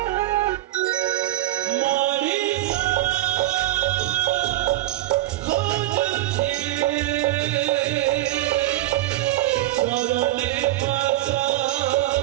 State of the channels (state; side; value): quieter; left; 15.6 dB